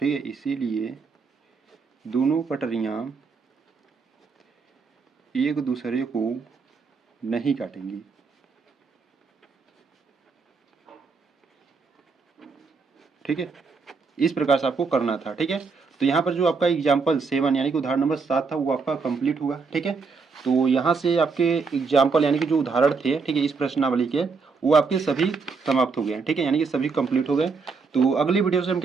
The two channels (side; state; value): left; quieter; 4.8 dB